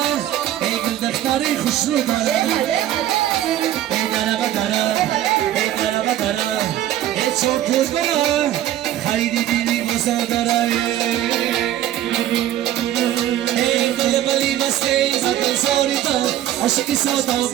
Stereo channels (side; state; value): left; quieter; 12.5 dB